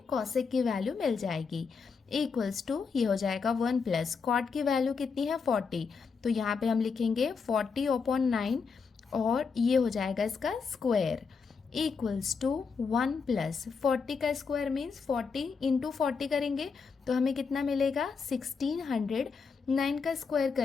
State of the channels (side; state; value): right; quieter; 5.4 dB